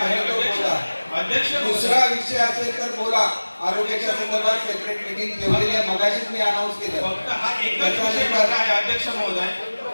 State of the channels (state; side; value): inverted; both; correlation -1.00